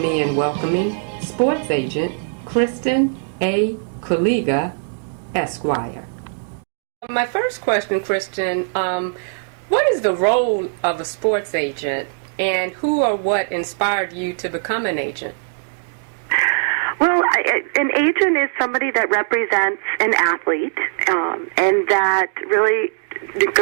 in welcoming sports agent Kristen A. Kuliga, Esquire. My first question, Kristen, what is the role of a sports agent, and who or what inspired you to become an agent? Well, an agent is somebody that represents an athlete and that really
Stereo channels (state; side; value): silent; left; digital silence